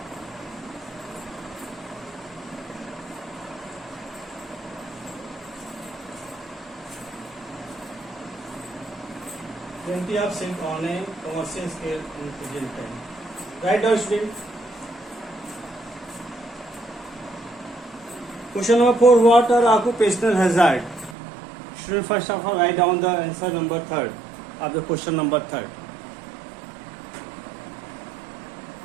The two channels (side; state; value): left; drops out; at 21.2 s